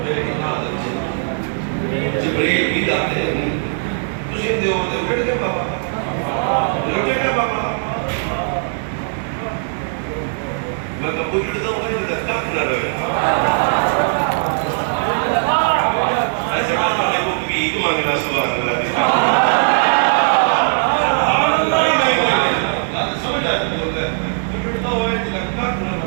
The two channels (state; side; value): silent; left; digital silence